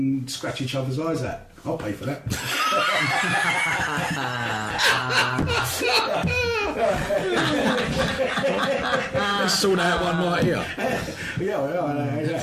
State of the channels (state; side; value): identical; both; correlation 1.00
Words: scratch each other's eyes out. I'll pay for that. Let's sort out one right here. Yeah,